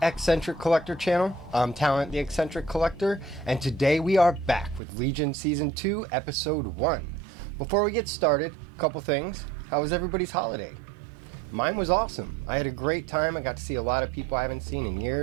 X-Centric Collector channel. I'm Talont, the X-Centric Collector, and today we are back with Legion Season 2, Episode 1. Before we get started, a couple things. How was everybody's holiday? Mine was awesome. I had a great time. I got to see a lot of people I haven't seen in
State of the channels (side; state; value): left; drops out; at 4.8 s